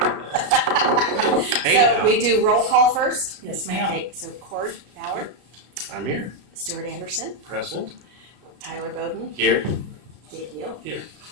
Hey, So now. we do roll call first. Yes, ma'am. Okay, so Cord Bauer, I'm here. Stuart Anderson, Present. Tyler Bowden, Here. Dave Neal. Here.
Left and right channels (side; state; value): left; late; 33 ms